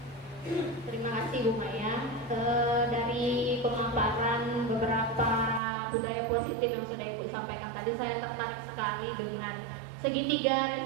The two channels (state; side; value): drops out; left; at 5.6 s